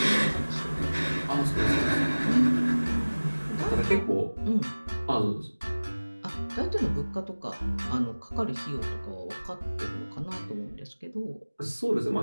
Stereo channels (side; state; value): both; inverted; correlation -1.00